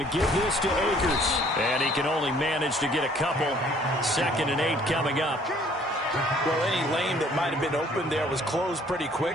to give this to Akers. And he can only manage to get a couple. 2nd and 8 coming up. Well, any lane that might have been open there was closed pretty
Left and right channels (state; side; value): normal; both; correlation 0.58